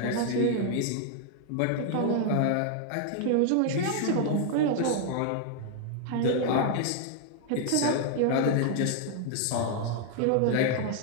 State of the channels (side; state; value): both; different; correlation 0.00